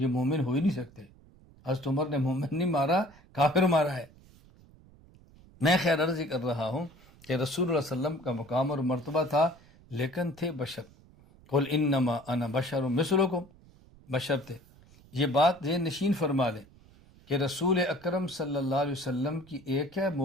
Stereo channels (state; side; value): noise; right; rumble, 25 dB below the sound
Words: مومن ہو ہی نہیں سکتے۔ حضرت عمر نے مومن نہیں مارا، کافر مارا ہے۔ میں خیر عرض کر رہا ہوں کہ رسول اللہ صلی اللہ علیہ وسلم کا مقام اور مرتبہ تھا، لیکن تھے بشر۔ قل انما انا بشر مثلکم، بشر تھے۔ یہ بات ذہن نشین فرما لیں کہ رسول اکرم صلی اللہ علیہ وسلم کی ایک ہے